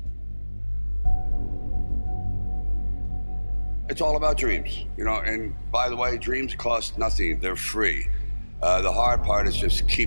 It's all about dreams, you know, and by the way, dreams cost nothing, they're free. The hard part is just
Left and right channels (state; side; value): inverted; both; correlation -1.00